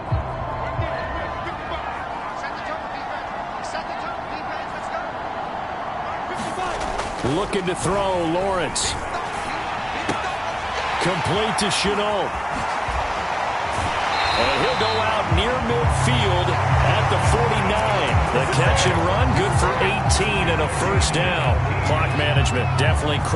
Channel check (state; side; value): identical; both; correlation 1.00